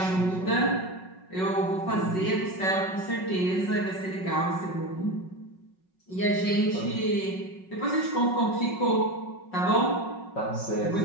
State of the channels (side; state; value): right; late; 5.4 ms